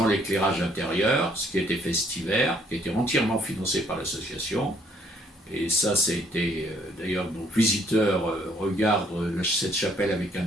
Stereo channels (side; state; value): both; normal; correlation 0.65